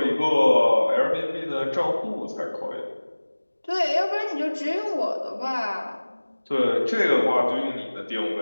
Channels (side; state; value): both; inverted; correlation -1.00